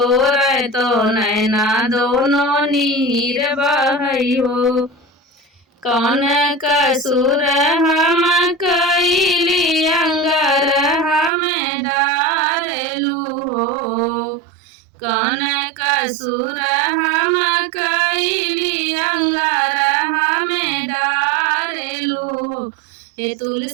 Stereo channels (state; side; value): drops out; left; at 11.3 s